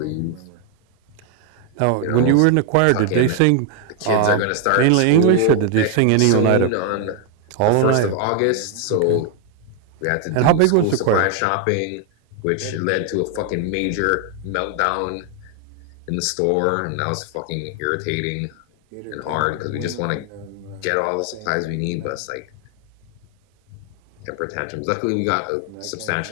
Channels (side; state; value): both; different; correlation 0.00